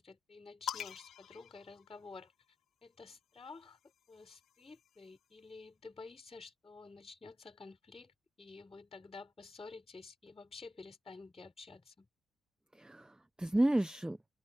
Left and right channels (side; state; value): both; normal; correlation 0.95